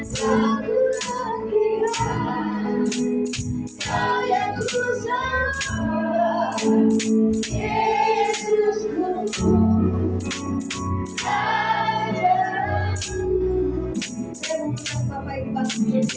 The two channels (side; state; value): both; identical; correlation 1.00